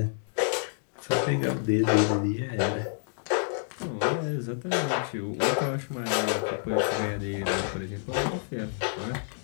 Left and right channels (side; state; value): right; silent; digital silence